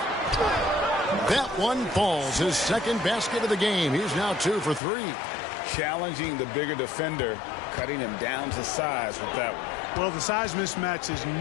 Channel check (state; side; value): drops out; right; at 4.8 s